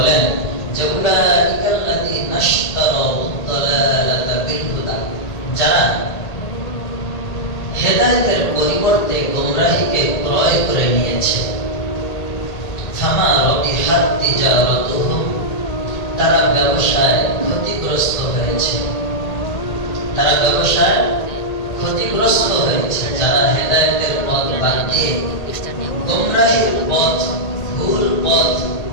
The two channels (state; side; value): late; right; 1.8 ms